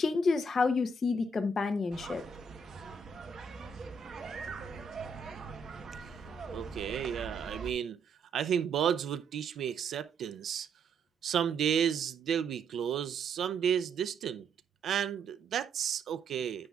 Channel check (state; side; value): quieter; left; 3.3 dB